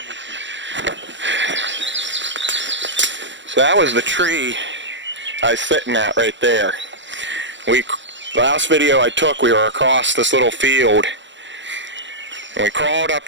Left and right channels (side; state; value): left; late; 0.54 ms